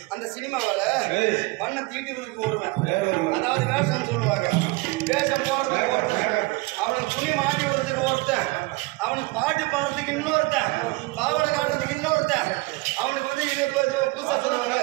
அந்த சினிமாவில பண்ண தீட்டுவதற்கு ஒருவன், அதாவது வேஷம் சொல்லுவாங்க. வேஷம் போடுறதுக்கு ஒருத்தன், அவனுக்கு துணி மாட்டி விடுறதுக்கு ஒருத்தன், அவனுக்கு பாட்டு பாடுறதுக்கு இன்னொருத்தன், பாவனை காட்டுறதுக்கு இன்னொருத்தன், அவனுக்கு வந்து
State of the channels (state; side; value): quieter; left; 23.9 dB